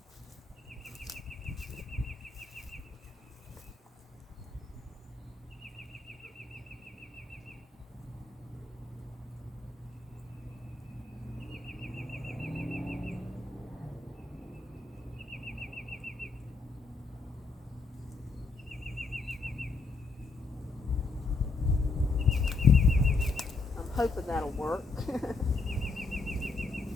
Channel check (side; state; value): right; quieter; 3.8 dB